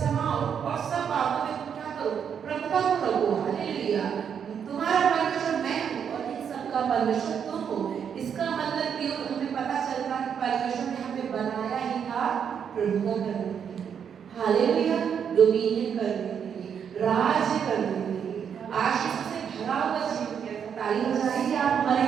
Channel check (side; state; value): left; quieter; 7.7 dB